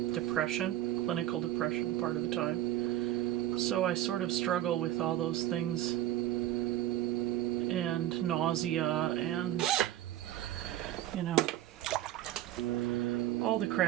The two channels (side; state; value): left; quieter; 13.5 dB